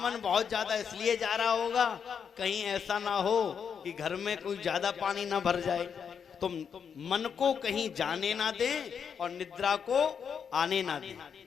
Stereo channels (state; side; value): quieter; right; 7.0 dB